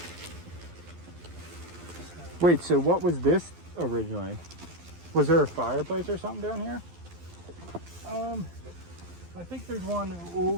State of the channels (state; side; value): late; left; 12 ms